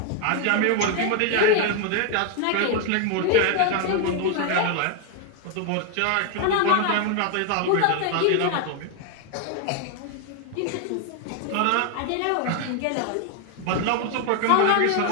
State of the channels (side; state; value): both; different; correlation 0.01